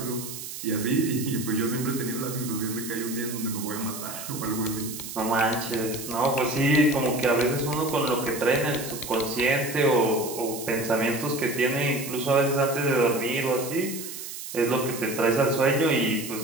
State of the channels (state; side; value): noise; right; hiss, 9 dB below the sound